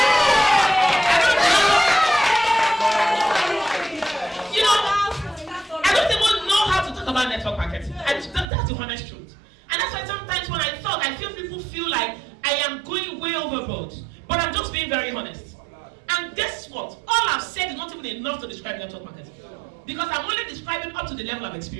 I don't even know how to talk about network marketing. That's the honest truth. And that's why sometimes when I talk, I feel people feel like I am going way overboard. But I'm just being very honest. And guess what? All I've said is not even enough to describe network marketing. Because I'm only describing up to the level I've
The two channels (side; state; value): left; drops out; at 8.5 s